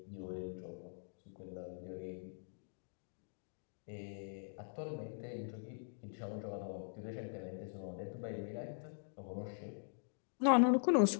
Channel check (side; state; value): right; silent; digital silence